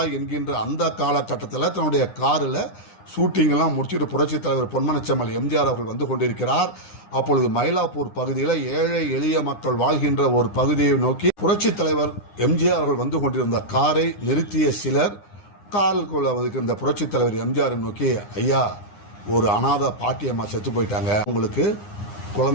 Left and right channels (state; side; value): late; right; 9.8 ms